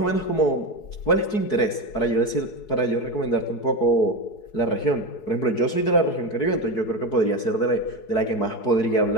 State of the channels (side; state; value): right; late; 4.7 ms